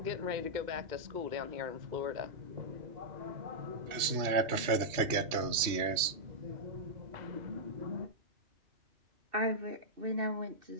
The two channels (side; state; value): left; late; 3.2 ms